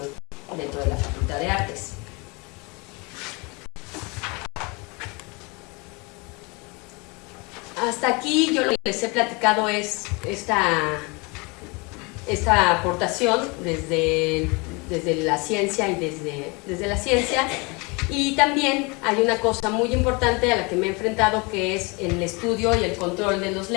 dentro de la Facultad de Artes. Hasta aquí yo lo que les he platicado es esta aportación desde la ciencia y desde la ciencia. Y también hay una cosa muy importante a la que me he enfrentado, que es el estudio y el control de los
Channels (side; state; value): right; quieter; 28.3 dB